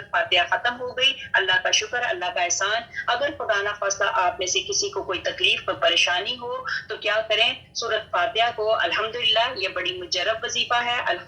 فاتحہ ختم ہو گئی. اللہ کا شکر، اللہ کا احسان. اگر خدا نہ خواستہ آپ میں سے کسی کو کوئی تکلیف پر پریشانی ہو تو کیا کریں؟ سورۃ فاتحہ کو الحمدللہ، یہ بڑی مجرب وظیفہ ہے.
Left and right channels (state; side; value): identical; both; correlation 1.00